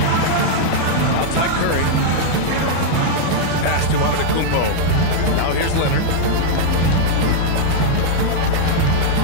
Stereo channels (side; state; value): both; different; correlation -0.01